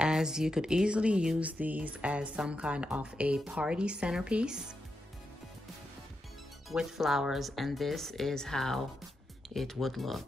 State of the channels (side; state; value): both; normal; correlation 0.86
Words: you could easily use these as some kind of a party centerpiece with flowers, and this is how it would